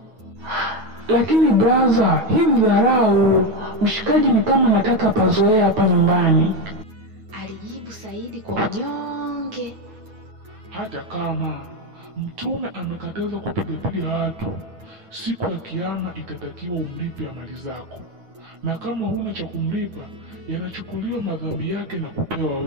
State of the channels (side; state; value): left; late; 9.4 ms